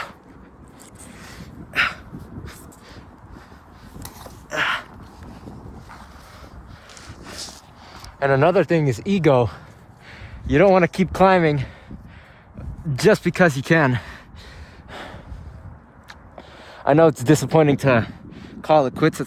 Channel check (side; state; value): both; identical; correlation 1.00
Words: And another thing is ego. You don't want to keep climbing just because you can. I know it's disappointing to call it quits at